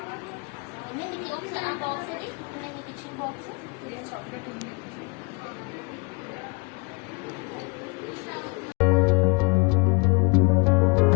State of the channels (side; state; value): right; quieter; 29.2 dB